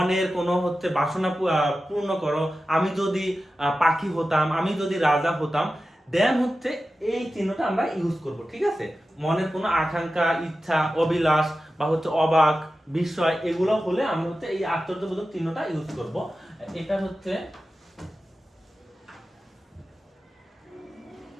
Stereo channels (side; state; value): both; normal; correlation 0.93